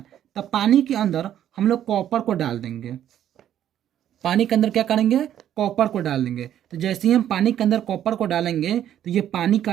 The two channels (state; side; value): quieter; left; 10.8 dB